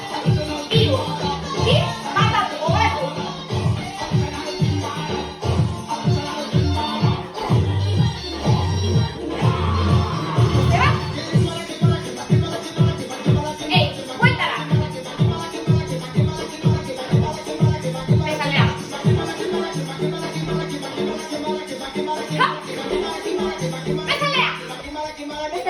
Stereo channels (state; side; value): identical; both; correlation 1.00